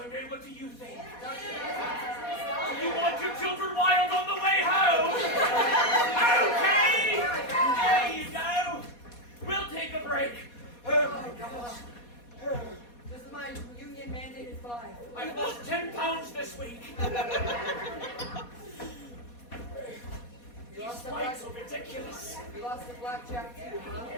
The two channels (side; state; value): right; late; 4.2 ms